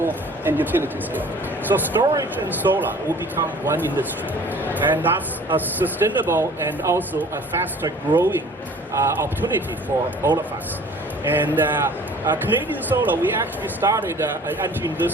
and utility scale? So storage and solar will become one industry, and that's a sustainable and also a faster growing opportunity for all of us. And Canadian Solar, we actually started entering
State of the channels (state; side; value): normal; both; correlation 0.49